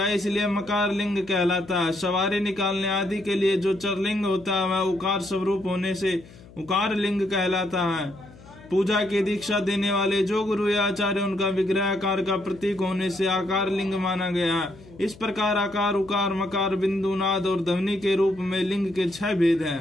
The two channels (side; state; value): left; noise; hum, 21 dB below the sound